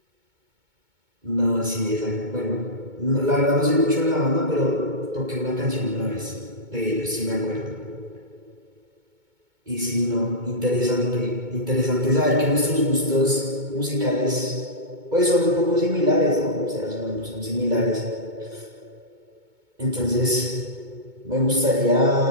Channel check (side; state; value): left; late; 2.2 ms